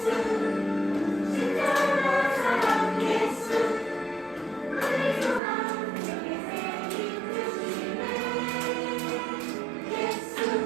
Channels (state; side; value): drops out; left; at 5.4 s